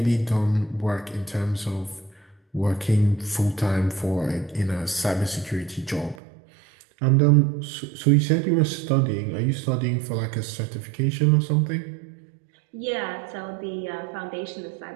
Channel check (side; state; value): left; drops out; at 6.2 s